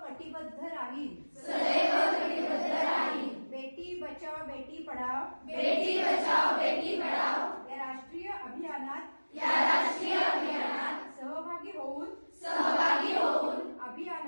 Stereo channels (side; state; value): both; inverted; correlation -1.00